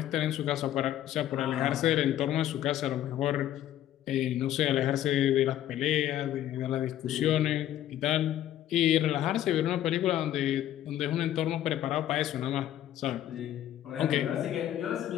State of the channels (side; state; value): right; quieter; 12.2 dB